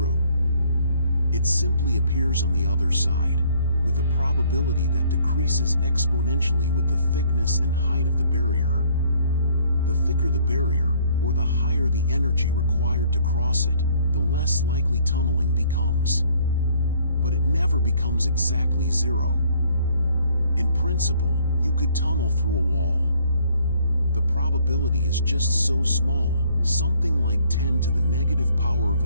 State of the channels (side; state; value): both; inverted; correlation -0.62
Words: It simply appears on the other side, with a probability that decreases exponentially with the thickness and height of the barrier. The thicker the barrier, or the higher the energy required to cross it, the less likely tunneling becomes. But it never becomes exactly zero. In principle, you could tunnel through a wall. The probability is just so small, something like 10 to the negative power of a